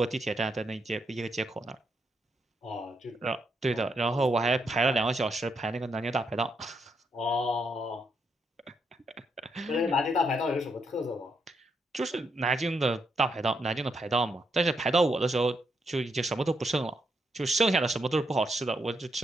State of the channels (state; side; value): normal; both; correlation 0.79